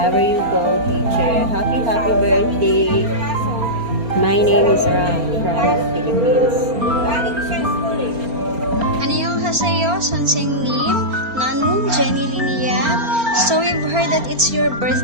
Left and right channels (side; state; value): left; late; 4.3 ms